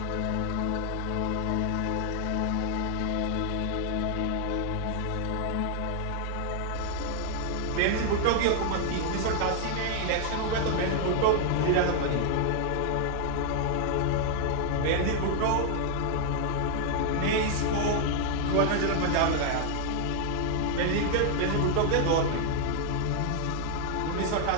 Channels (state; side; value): different; both; correlation 0.00